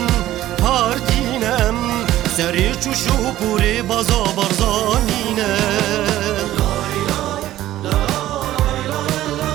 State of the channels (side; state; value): left; quieter; 14.1 dB